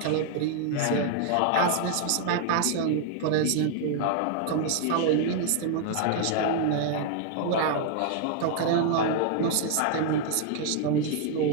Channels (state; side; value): different; both; correlation 0.00